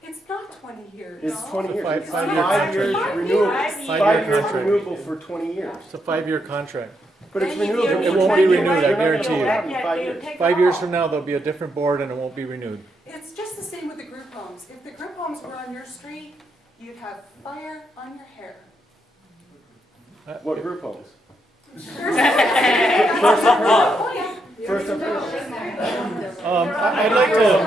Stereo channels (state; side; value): normal; both; correlation 0.80